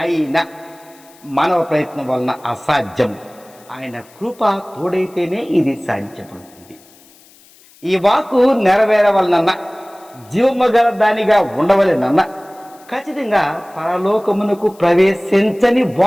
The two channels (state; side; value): noise; left; hiss, 27 dB below the sound